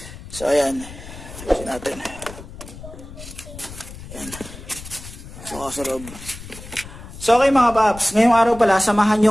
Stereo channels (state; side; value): noise; left; rumble, 15 dB below the sound